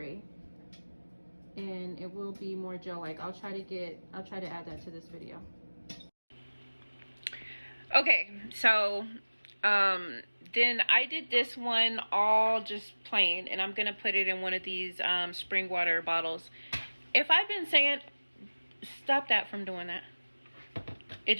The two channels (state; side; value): inverted; both; correlation -1.00